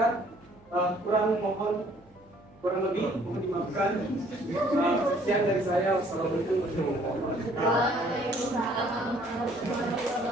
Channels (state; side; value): noise; right; hum, 30 dB below the sound